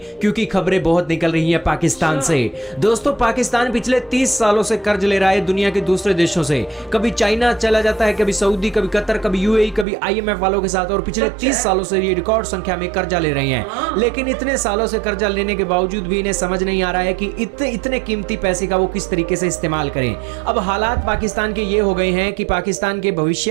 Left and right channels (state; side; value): drops out; left; at 9.9 s